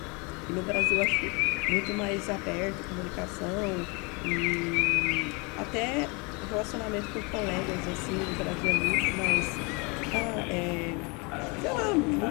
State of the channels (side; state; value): right; quieter; 30.2 dB